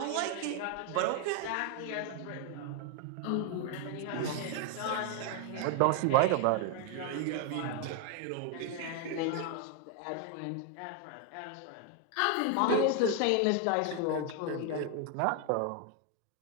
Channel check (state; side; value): different; both; correlation 0.01